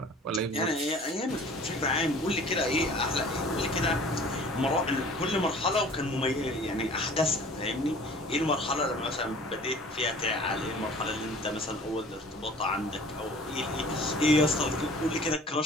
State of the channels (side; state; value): both; normal; correlation 0.47